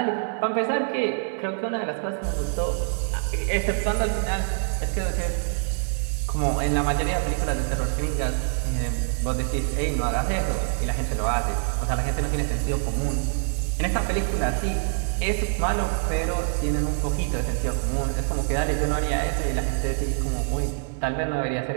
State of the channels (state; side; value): silent; left; digital silence